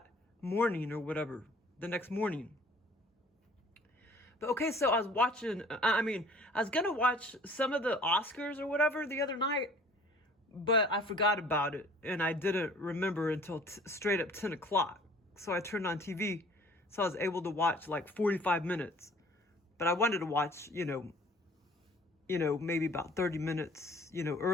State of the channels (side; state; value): both; normal; correlation 0.52